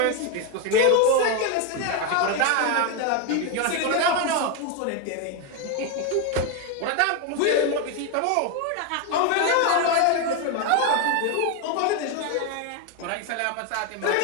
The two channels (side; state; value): both; different; correlation 0.01